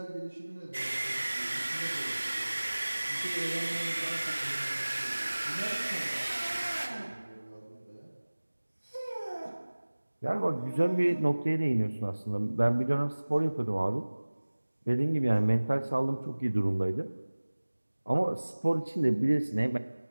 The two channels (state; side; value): inverted; both; correlation -1.00